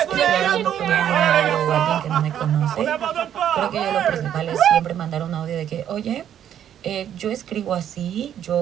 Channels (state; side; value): quieter; left; 10.1 dB